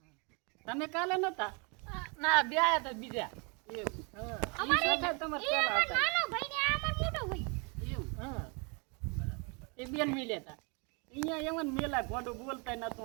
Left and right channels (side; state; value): left; quieter; 32.8 dB